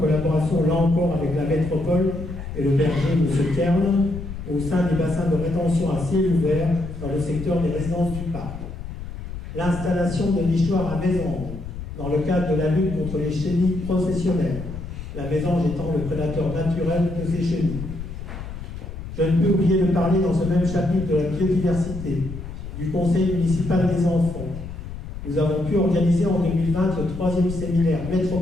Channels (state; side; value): noise; left; rumble, 9 dB below the sound